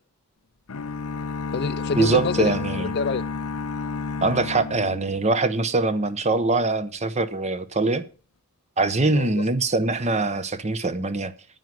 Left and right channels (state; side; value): normal; both; correlation 0.24